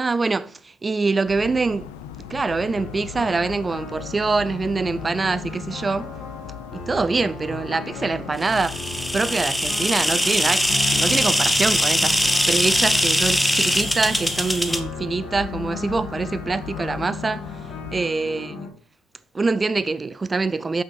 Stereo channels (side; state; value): both; normal; correlation 0.91